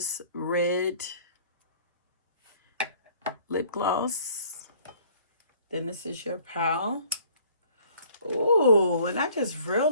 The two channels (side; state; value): both; inverted; correlation -0.55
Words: red lip gloss, then this is your pile. Ooh, and I just